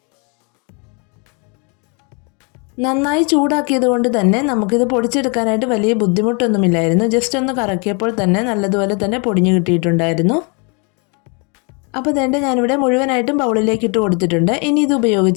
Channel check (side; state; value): right; quieter; 34.2 dB